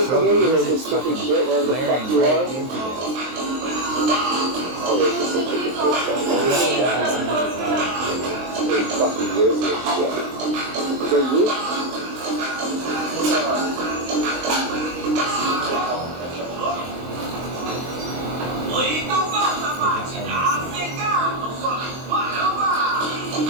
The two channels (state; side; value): late; left; 23 ms